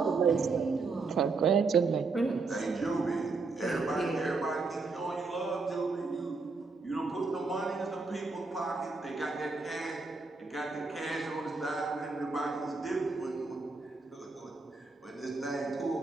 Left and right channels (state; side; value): quieter; left; 4.1 dB